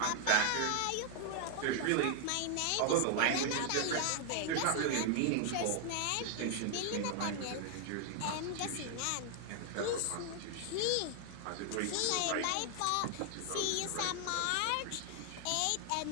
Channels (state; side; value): different; both; correlation 0.00